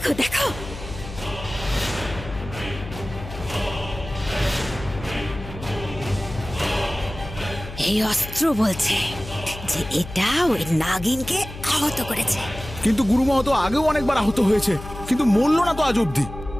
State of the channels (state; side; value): noise; left; hum, 12 dB below the sound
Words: দেখো, এই অস্ত্র বলছে যে এটা ওই নাগিনকে আহত করেছে। কিন্তু গুরুমা তো আগেও অনেকবার আহত হয়েছে, কিন্তু মরল না তো আজ অব্দি।